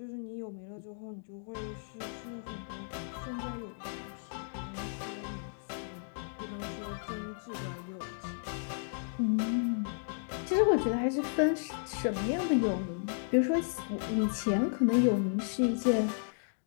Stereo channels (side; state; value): right; silent; digital silence